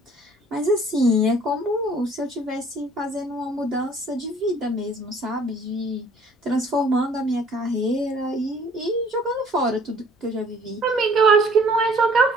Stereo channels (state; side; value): normal; both; correlation 0.55